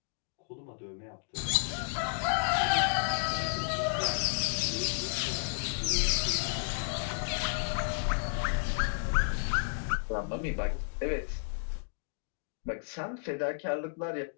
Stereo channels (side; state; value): right; silent; digital silence